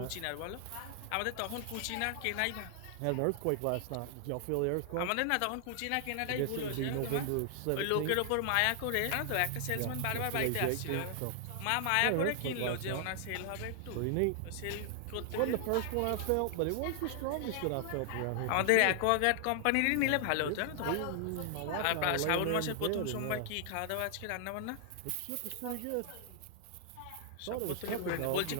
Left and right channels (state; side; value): different; both; correlation 0.00